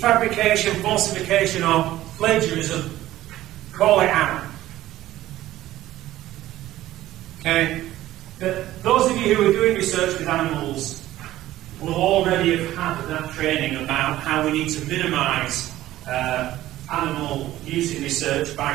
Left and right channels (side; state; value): left; quieter; 14.8 dB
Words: falsification, or plagiarism, call it out. Okay? But those of you you who are doing research with animals will already have had that training about how we need to minimise animal use in research